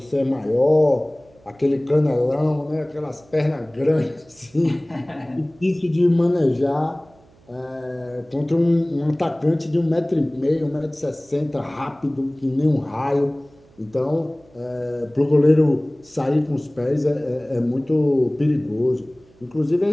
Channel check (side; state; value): right; noise; hum, 29 dB below the sound